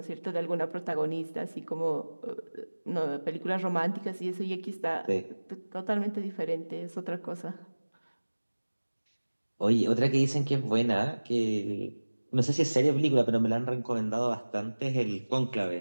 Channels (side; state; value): both; inverted; correlation -1.00